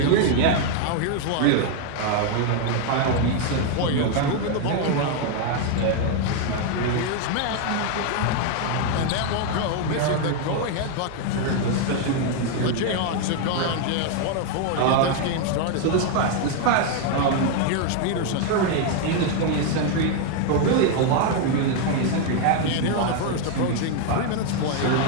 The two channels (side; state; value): both; different; correlation 0.00